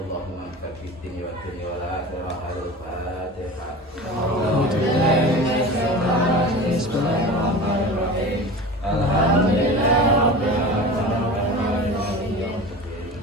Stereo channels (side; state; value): both; normal; correlation 0.33